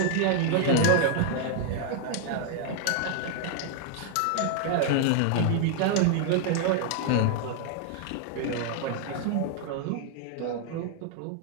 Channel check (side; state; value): both; different; correlation 0.00